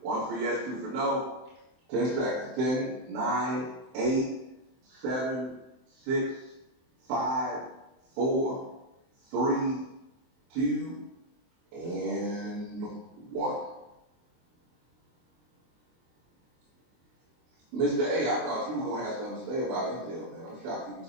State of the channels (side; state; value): left; late; 23 ms